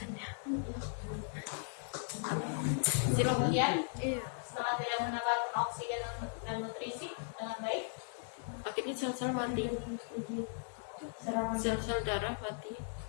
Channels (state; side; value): silent; right; digital silence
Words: Silakan. kemudian setelah tidak mendapatkan oksigen dan nutrisi dengan baik, Akhirnya sel-sel mati. Sel-sel darah mati.